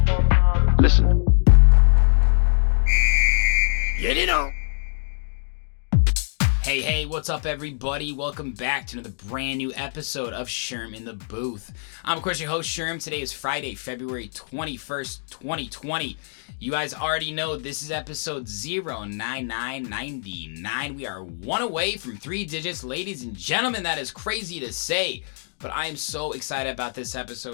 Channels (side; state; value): right; silent; digital silence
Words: Listen. Get it on. Hey, what's up, everybody? Welcome back to another brand new episode of Sherm in the Booth. I'm, of course, your host, Sherm. Today is Friday, February 21st, 2020. You guys already know this is episode 09999. We are one away from 3 digits, ladies and gentlemen. That is crazy to say. But I am so excited about this